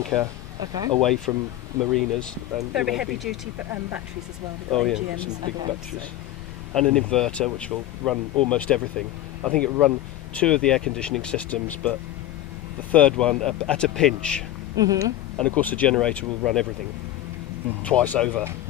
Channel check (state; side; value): quieter; right; 13.8 dB